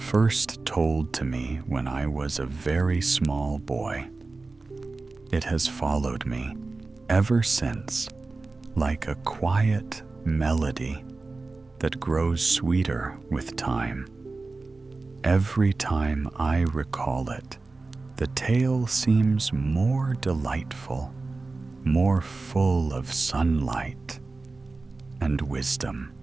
told to me when I was a very small boy. It has followed me ever since, like a quiet melody that grows sweeter with time. Every time I recall it, the tale seems more delightful, more full of sunlight and wisdom.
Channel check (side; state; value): left; quieter; 3.6 dB